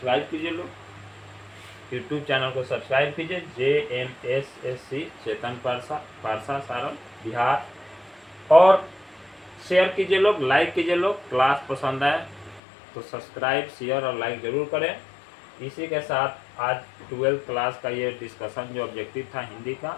कीजिए लोग, यूट्यूब चैनल को सब्सक्राइब कीजिए। JMSSC चेतन पारसा सारण बिहार। और शेयर कीजिए लोग, लाइक कीजिए लोग। क्लास पसंद आए तो सब्सक्राइब शेयर और लाइक जरूर करें। इसी के साथ आज 12th क्लास का ये डिस्कशन जो ऑब्जेक्टिव था हिंदी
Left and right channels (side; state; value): right; drops out; at 12.6 s